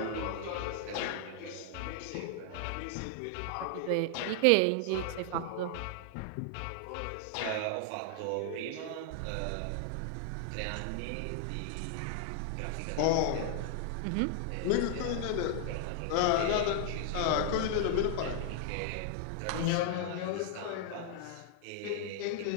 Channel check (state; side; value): different; both; correlation 0.00